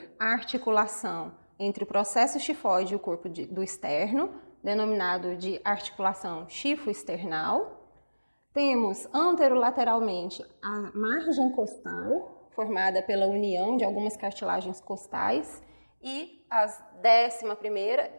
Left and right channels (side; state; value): both; inverted; correlation -1.00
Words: a articulação entre o processo xifoide e o corpo do externo, denominado de articulação xifoexternal. Temos anterolateralmente a margem costal, formada pela união de algumas cartilagens costais, e as 11ª